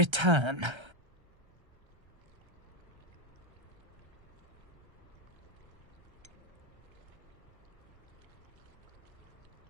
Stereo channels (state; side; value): late; left; 1.3 ms